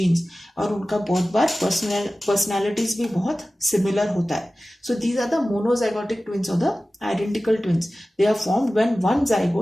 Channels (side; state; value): both; normal; correlation 0.96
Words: और उनका बहुत बार पर्सनैलिटीज भी बहुत सिमिलर होता है. So these are the monozygotic twins और the identical twins. They are formed when one